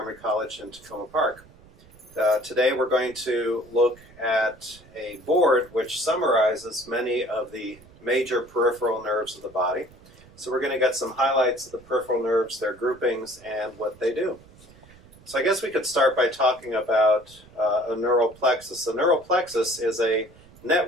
College in Tacoma Park. Today we're going to look at a board which summarizes many of the major peripheral nerves of the body. So we're going to get some highlights of the peripheral nerves, their groupings, and what they do. So I guess we could start by talking about a neural plexus. A neural plexus is a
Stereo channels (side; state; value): right; noise; rumble, 24 dB below the sound